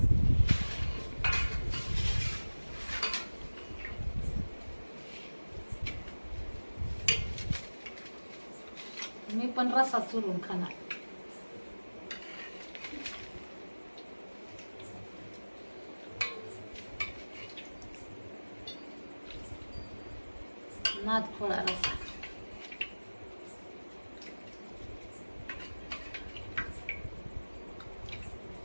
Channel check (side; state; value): both; inverted; correlation -1.00